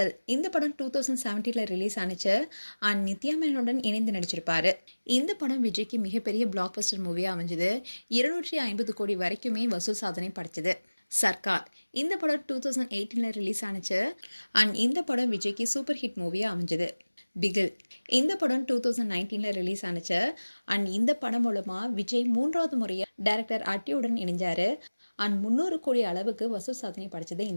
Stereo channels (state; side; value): inverted; both; correlation -1.00